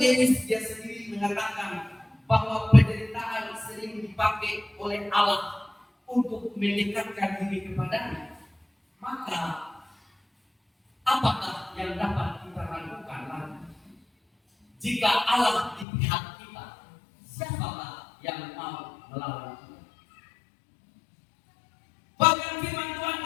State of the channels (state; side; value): drops out; right; at 15.9 s